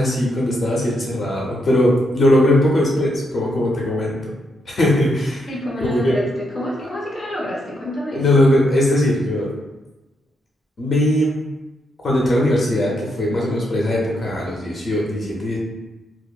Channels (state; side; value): normal; both; correlation 0.79